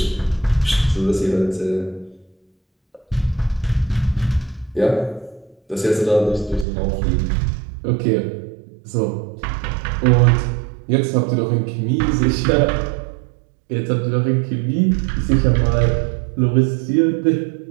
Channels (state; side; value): drops out; left; at 6.7 s